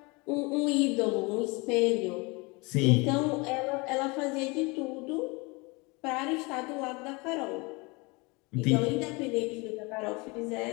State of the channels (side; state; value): right; quieter; 27.1 dB